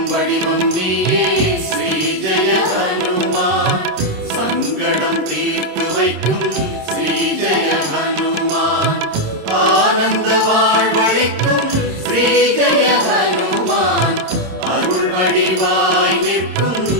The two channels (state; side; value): late; left; 26 ms